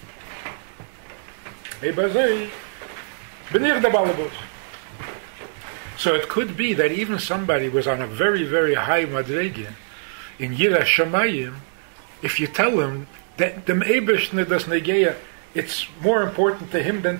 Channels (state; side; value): silent; left; 63 dB below the other